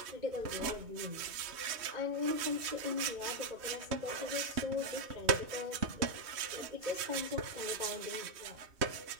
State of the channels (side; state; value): left; late; 3.1 ms